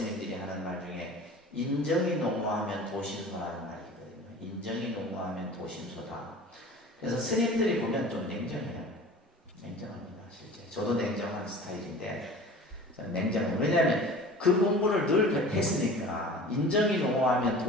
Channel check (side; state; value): both; normal; correlation 0.40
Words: 하는 말 중에 인정이 농후하면 도심소라는 말이 있거든요. 인정이 농후하면 도심소다. 그래서 스님들이 보면 좀 냉정해요. 냉정합니다, 실제. 저도 냉정한 스타일인데 저는 냉정해요. 왜냐하면 그 공부를 늘 했으니까 인정이 농후하면